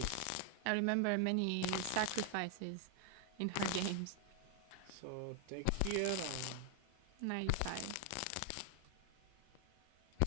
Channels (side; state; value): both; different; correlation 0.00